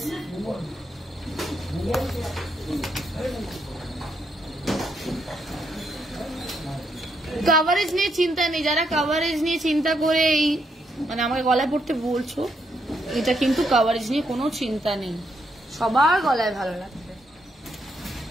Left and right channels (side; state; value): both; normal; correlation 0.77